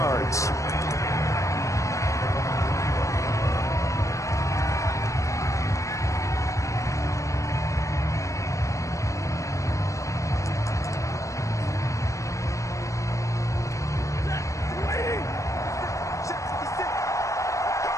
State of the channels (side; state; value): right; late; 0.15 ms